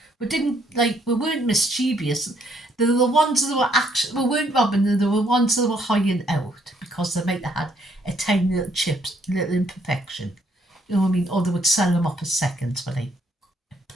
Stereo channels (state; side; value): normal; both; correlation 0.69